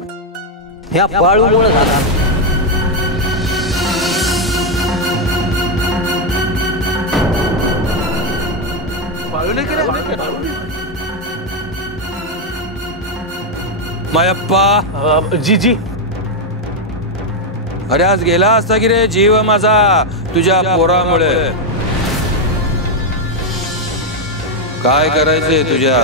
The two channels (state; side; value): normal; both; correlation 0.02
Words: ह्या पाळूमुळे झाला. मायप्पा, जी जी. अरे आज गेला असता की रे जीव माझा तुझ्या पोरामुळे. काय करायचंय